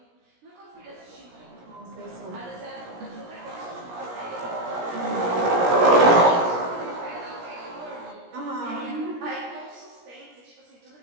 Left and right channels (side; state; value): left; late; 17 ms